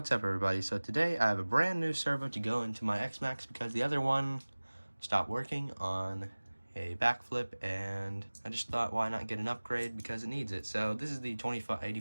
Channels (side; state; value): both; inverted; correlation -1.00